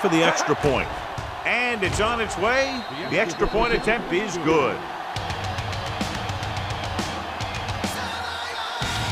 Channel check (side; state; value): both; identical; correlation 1.00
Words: the extra point. And it's on its way. The extra point attempt is good.